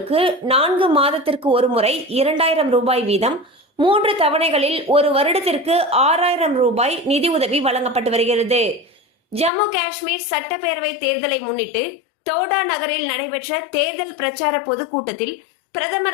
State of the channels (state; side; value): drops out; right; at 9.5 s